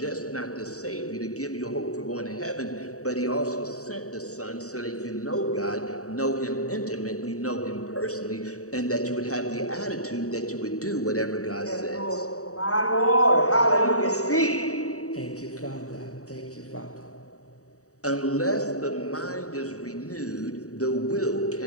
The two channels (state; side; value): late; right; 0.66 ms